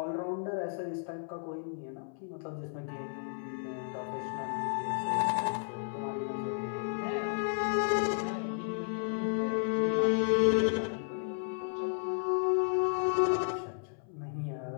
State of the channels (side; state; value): right; silent; 56 dB below the other